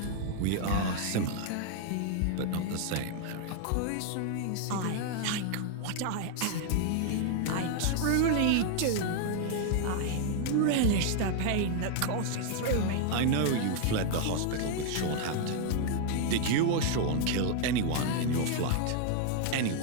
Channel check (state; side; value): different; both; correlation 0.00